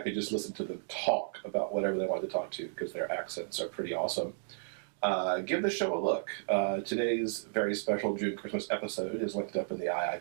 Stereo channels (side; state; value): left; silent; digital silence